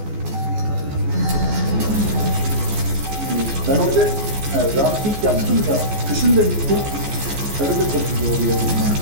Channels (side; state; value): left; late; 14 ms